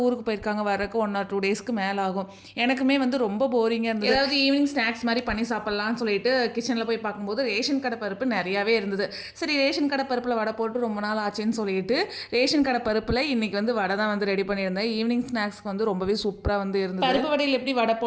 ஊருக்கு போயிருக்காங்க, வரக்கு 1 or 2 டேஸ்க்கு மேலே ஆகும். எனக்குமே வந்து ரொம்ப போரிங்காக இருந்தது. ஏதாவது ஈவினிங் ஸ்நாக்ஸ் மாதிரி பண்ணி சாப்பிட்லான்னு சொல்லிட்டு கிச்சனில் போய் பார்க்கும்போது ரேஷன் கடை பருப்பு நிறையாவே இருந்தது. சரி ரேஷன் கடை பருப்பில் வடை போட்டு ரொம்ப நாள் ஆச்சுன்னு சொல்லிட்டு ரேஷன் கடை பருப்பில் இன்றைக்கி வந்து வடை தான் வந்து ரெடி பண்ணியிருந்தேன். ஈவினிங் ஸ்நாக்ஸ்க்கு வந்து ரொம்பவே சூப்பராக வந்து இருந்தது. பருப்பு வடையில் எப்படி வடை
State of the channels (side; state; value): both; identical; correlation 1.00